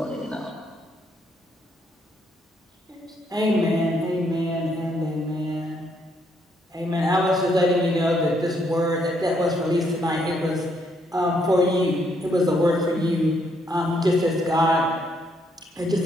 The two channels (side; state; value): both; normal; correlation 0.73